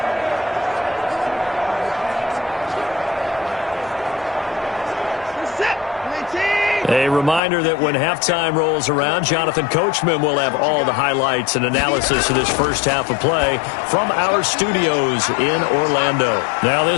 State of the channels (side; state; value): right; drops out; at 7.4 s